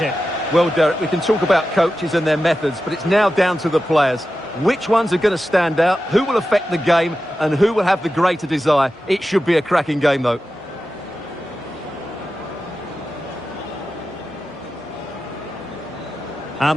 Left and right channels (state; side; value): normal; both; correlation 0.92